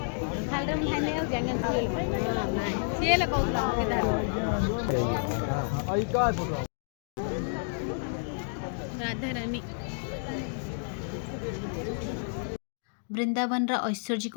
खालम खाने हो जंगल से ले कहला राधा रानी वृंदावन ऐश्वर्यिक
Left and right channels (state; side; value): silent; right; digital silence